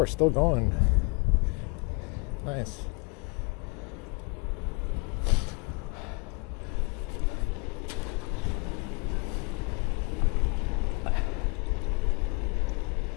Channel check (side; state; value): right; quieter; 30.9 dB